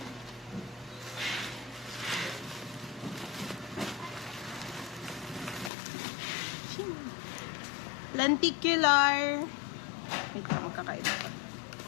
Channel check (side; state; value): right; drops out; at 5.7 s